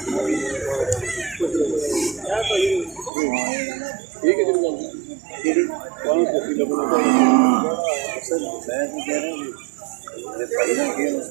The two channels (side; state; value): left; drops out; at 3.1 s